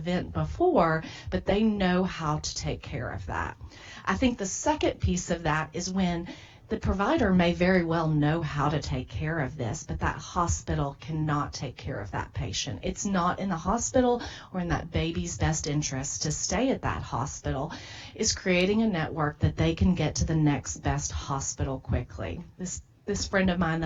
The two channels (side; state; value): both; identical; correlation 1.00